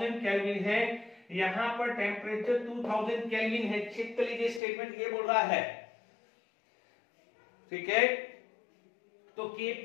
केल्विन है, यहां पर टेम्परेचर 2000 केल्विन है। चेक कर लीजिए स्टेटमेंट ये बोल रहा है, ठीक है। तो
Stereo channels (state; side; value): drops out; right; at 4.6 s